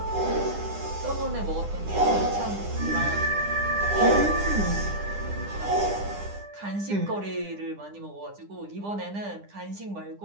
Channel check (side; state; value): left; late; 9.9 ms